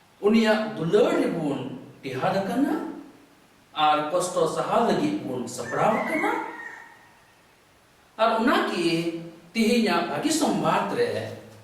unia dular bon tihada kana ar kosto sahal lagi pun sabraw kana ar unaki tihinya bagi sombatre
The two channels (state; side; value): identical; both; correlation 1.00